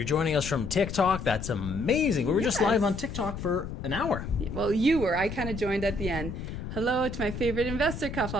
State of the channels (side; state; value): left; noise; rumble, 8 dB below the sound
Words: joining us from TikTok, that's amazing. We were just live on TikTok for an hour. Well, you were. I kind of joined at the end. Hello to my favorite investor